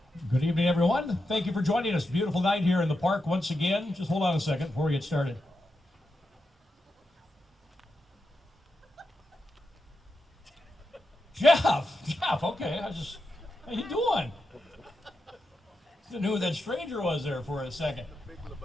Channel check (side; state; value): both; normal; correlation 0.87